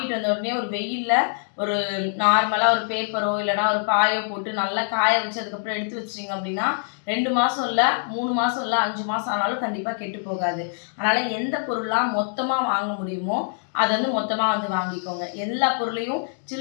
வந்த உடனே ஒரு வெயிலில் ஒரு நார்மலாக ஒரு பேப்பரோ இல்லைனா ஒரு பாயோ போட்டு நல்லா காய வச்சு அதுக்கப்புறம் எடுத்து வச்சிட்டிங்க அப்படின்னா 2 மாதம் இல்லை 3 மாதம் இல்லை 5 மாதம் ஆனாலும் கண்டிப்பாக கெட்டு போகாது. அதனால் எந்த பொருளாக மொத்தமாக வாங்க முடியுமோ அதை வந்து மொத்தமாக வந்து வாங்கிக்கோங்க. எல்லா பொருளையும்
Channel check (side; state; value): right; silent; 62 dB below the other